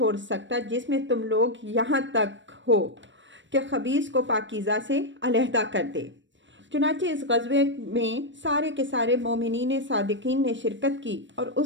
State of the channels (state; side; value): late; left; 0.54 ms